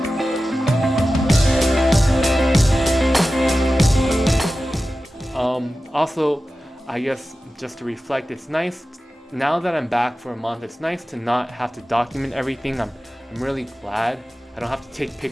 Also, I guess just to reflect, it's nice now that I'm back for a month. It's nice to not have to document everything. I'm really glad I don't have to take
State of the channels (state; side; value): normal; both; correlation 0.94